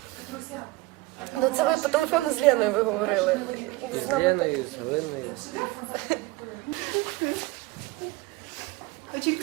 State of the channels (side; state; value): left; quieter; 20.5 dB